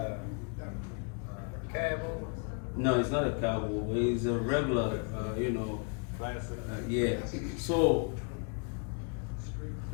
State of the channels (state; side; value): quieter; right; 39.0 dB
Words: Cabo? No, it's not a cowboy. It's a regular, Classic. yeah. So